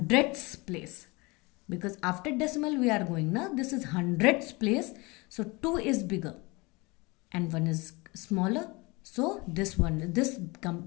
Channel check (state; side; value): quieter; right; 25.3 dB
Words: place. Because after decimal we are going now, this is hundredths place. So 2 is bigger and 1 is smaller. So this